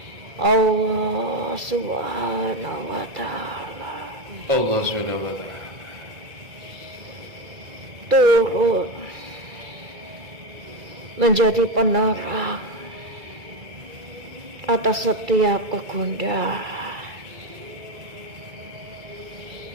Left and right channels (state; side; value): late; left; 2.3 ms